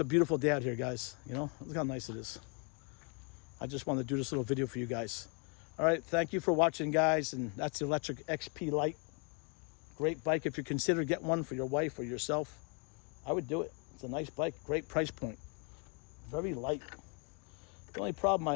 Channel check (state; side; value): quieter; right; 35.0 dB